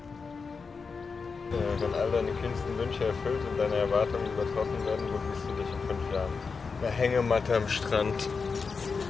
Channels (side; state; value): right; quieter; 5.0 dB